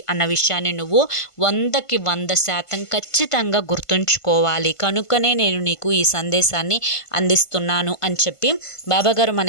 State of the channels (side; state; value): right; late; 1.5 ms